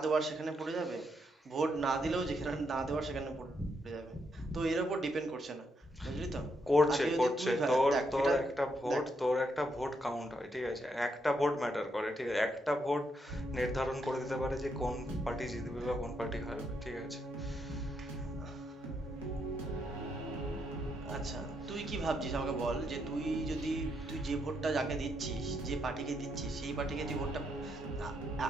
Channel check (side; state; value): both; normal; correlation 0.78